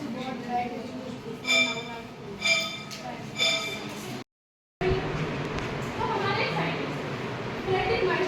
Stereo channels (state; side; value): identical; both; correlation 1.00